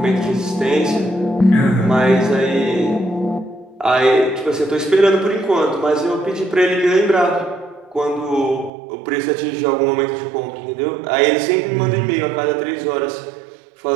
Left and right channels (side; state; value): left; drops out; at 8.7 s